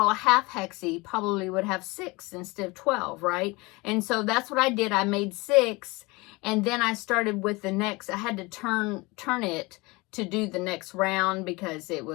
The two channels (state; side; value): quieter; right; 24.2 dB